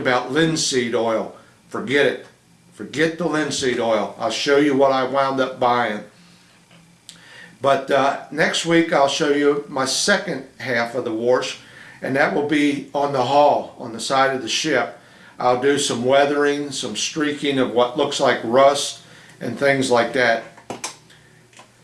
linseed oil. Forget it. Forget the linseed oil. I'll show you what I wound up buying. But next week I'll show you my second half of the wash, and that will be on the hull, on the side of the ship. I'll do some weathering, some streaking of what looks like rust and things like that.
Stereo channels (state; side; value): identical; both; correlation 1.00